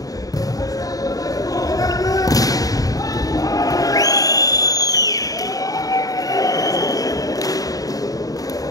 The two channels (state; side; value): late; right; 0.18 ms